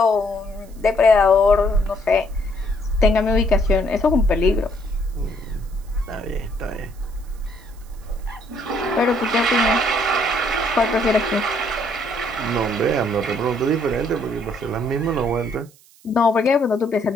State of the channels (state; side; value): noise; right; hiss, 28 dB below the sound